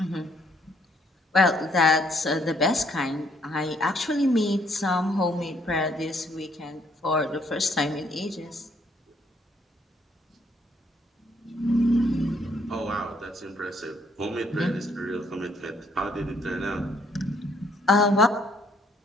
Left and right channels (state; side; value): normal; both; correlation 0.67